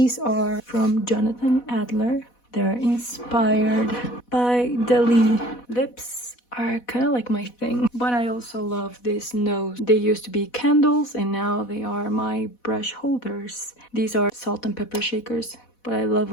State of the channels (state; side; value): late; right; 4.1 ms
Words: are from Jonathan Adler. They're inspired by Dali. Lips are kind of like my thing, but I also love this nose. They used to be candles and now they are my brush holders. These are salt and pepper shakers, but I love